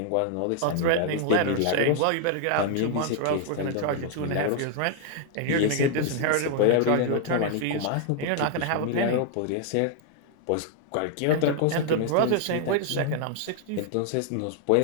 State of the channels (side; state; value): both; different; correlation 0.00